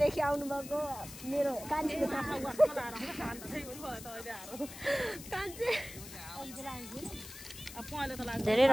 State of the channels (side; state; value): left; noise; hiss, 13 dB below the sound